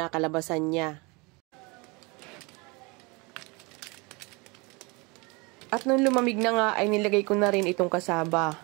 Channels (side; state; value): left; quieter; 27.7 dB